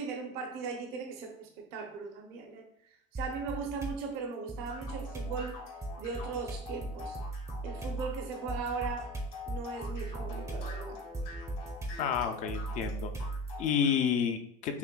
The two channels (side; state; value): both; normal; correlation 0.31